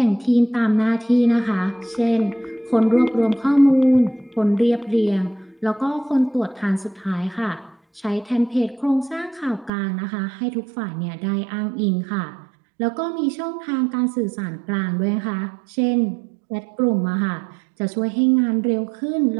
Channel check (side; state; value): left; drops out; at 9.7 s